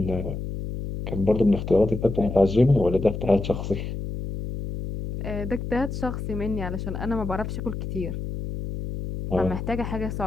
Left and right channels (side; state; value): left; noise; hum, 6 dB below the sound